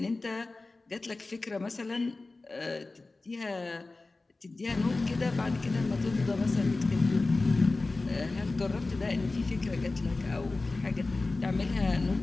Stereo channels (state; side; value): quieter; right; 3.4 dB